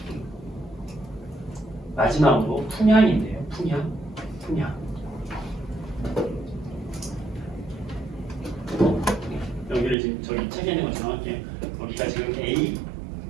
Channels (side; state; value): left; drops out; at 10.0 s